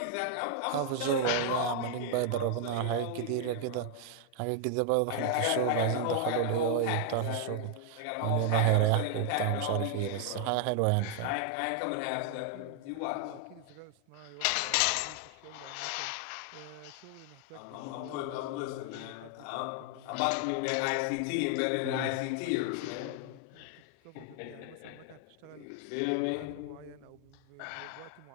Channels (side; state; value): both; different; correlation 0.00